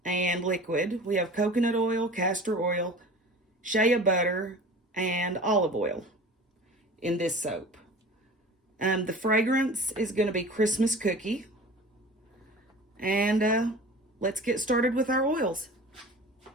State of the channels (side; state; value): both; normal; correlation 0.39